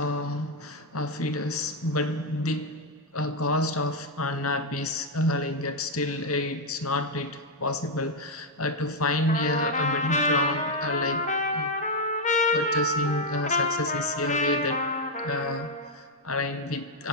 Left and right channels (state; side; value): normal; both; correlation 0.01